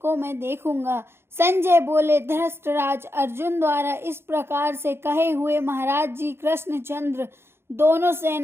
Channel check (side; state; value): left; late; 0.12 ms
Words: देखूंगा। संजय बोले, धृतराज अर्जुन द्वारा इस प्रकार से कहे हुए महाराज जी कृष्णचंद्र दोनों